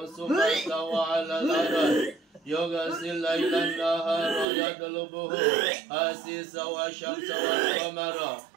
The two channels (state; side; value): drops out; left; at 4.5 s